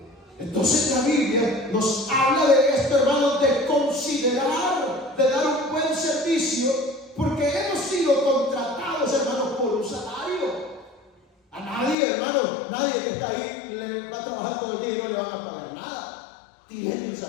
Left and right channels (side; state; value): right; drops out; at 12.0 s